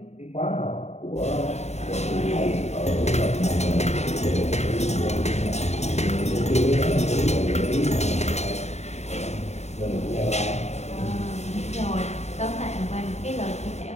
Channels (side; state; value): right; late; 0.32 ms